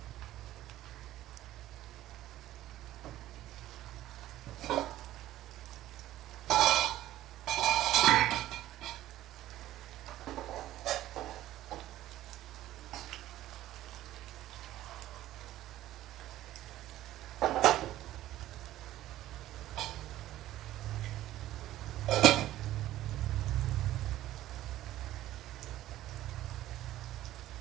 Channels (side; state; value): left; quieter; 14.3 dB